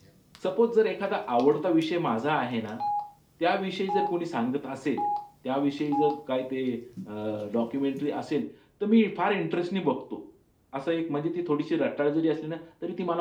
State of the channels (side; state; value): both; identical; correlation 1.00